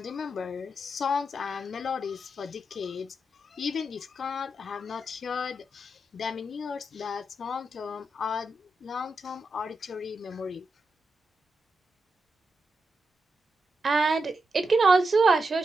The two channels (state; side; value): normal; both; correlation 0.86